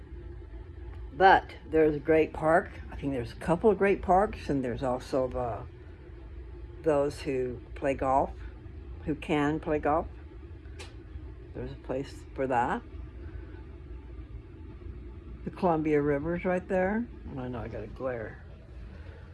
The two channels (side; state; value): both; identical; correlation 1.00